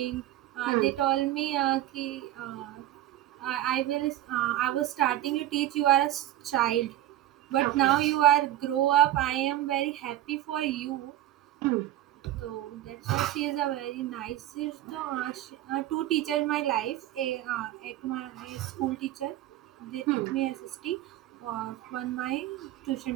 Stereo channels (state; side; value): quieter; left; 13.7 dB